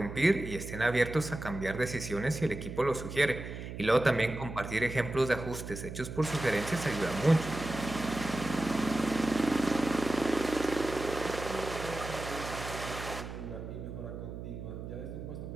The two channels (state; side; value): noise; right; hum, 9 dB below the sound